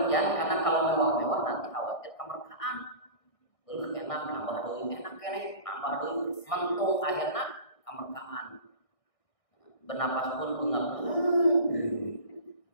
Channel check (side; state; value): right; late; 1.6 ms